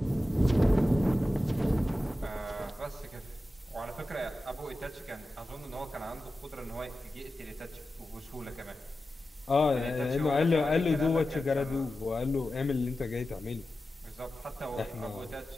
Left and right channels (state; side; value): normal; both; correlation 0.93